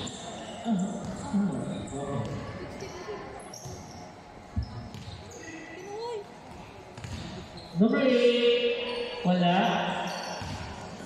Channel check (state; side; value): identical; both; correlation 1.00